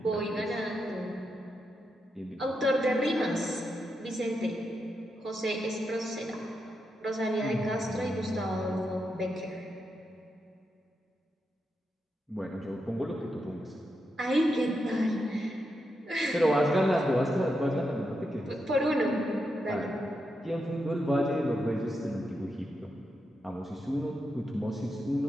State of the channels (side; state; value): both; normal; correlation 0.85